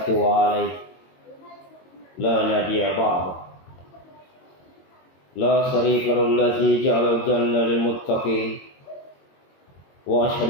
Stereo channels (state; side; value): late; right; 22 ms